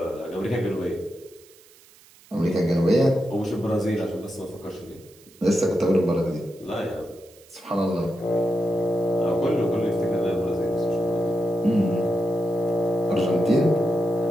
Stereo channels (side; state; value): right; noise; hiss, 26 dB below the sound